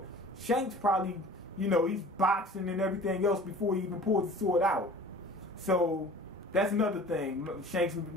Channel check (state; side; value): normal; both; correlation 0.43